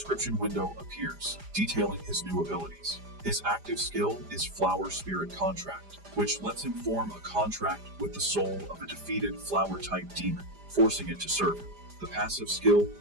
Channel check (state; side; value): late; left; 5.0 ms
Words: window appears, detailing his new abilities. His active skill is Flower Spirit Contract, which lets him form a contract with the soul of a defeated flower-type demon, forcing it to serve him. The passive skill,